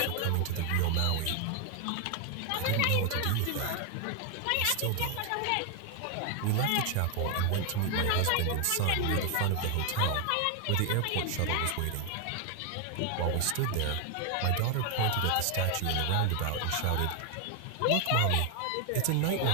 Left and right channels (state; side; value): different; both; correlation 0.00